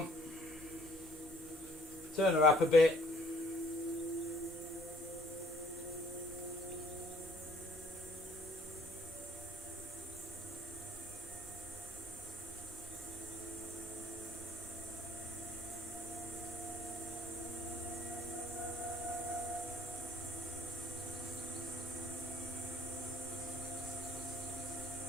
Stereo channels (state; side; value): normal; both; correlation 0.60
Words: Turn her up a bit.